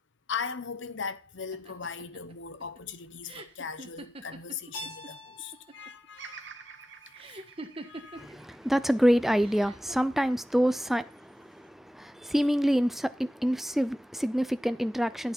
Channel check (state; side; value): normal; both; correlation 0.91